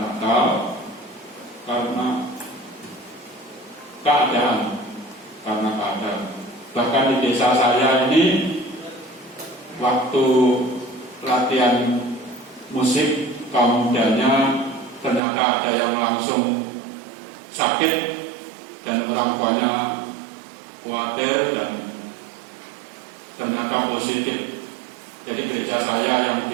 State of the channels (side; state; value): left; drops out; at 15.2 s